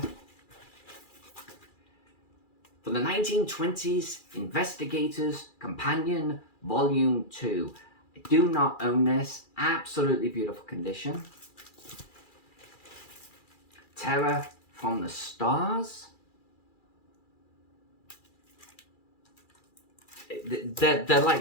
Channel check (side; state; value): right; late; 2.4 ms